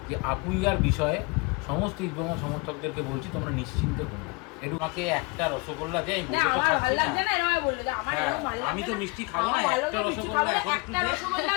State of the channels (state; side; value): quieter; right; 27.8 dB